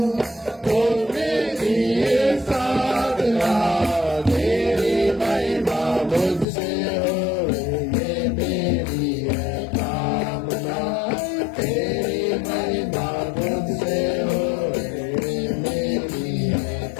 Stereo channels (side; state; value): right; drops out; at 6.5 s